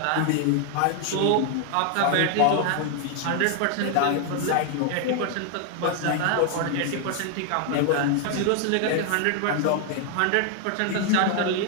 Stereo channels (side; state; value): both; different; correlation 0.00